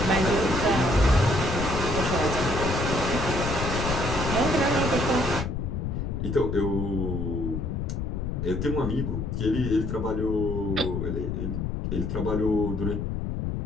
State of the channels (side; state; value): left; noise; rumble, 2 dB below the sound